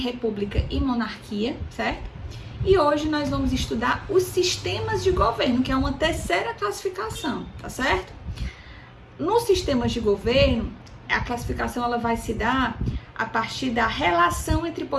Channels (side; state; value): both; identical; correlation 1.00